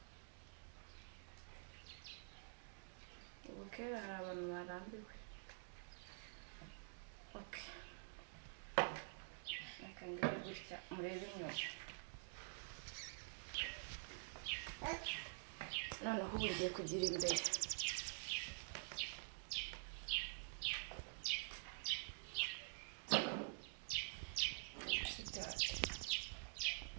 Ubu kera hari abantu barambiwe. Okay, reka ngire gutya murebe inyuma. Noneho ubu ngiye kugira imbere.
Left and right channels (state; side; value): silent; left; digital silence